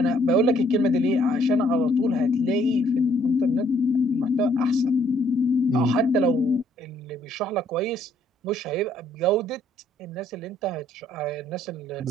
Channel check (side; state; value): both; normal; correlation 0.66